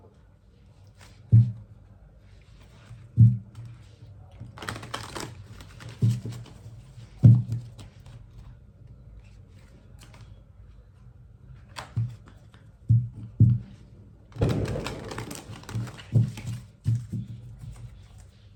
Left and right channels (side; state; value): both; identical; correlation 1.00